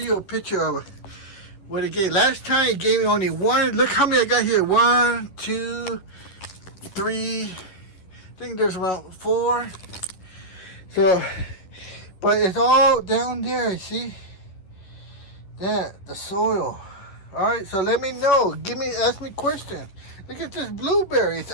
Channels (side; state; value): right; late; 11 ms